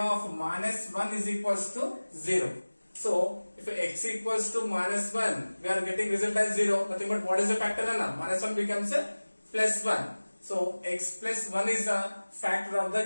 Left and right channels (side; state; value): both; inverted; correlation -1.00